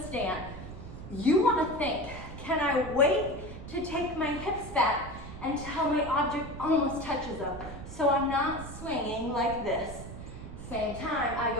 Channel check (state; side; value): noise; right; rumble, 11 dB below the sound